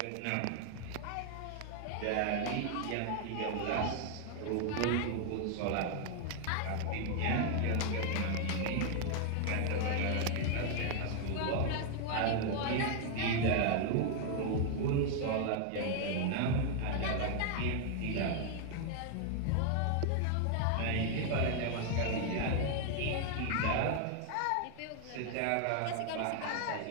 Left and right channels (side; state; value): both; different; correlation 0.00